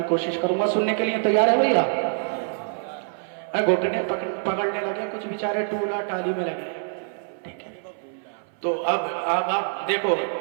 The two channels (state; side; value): silent; left; 58 dB below the other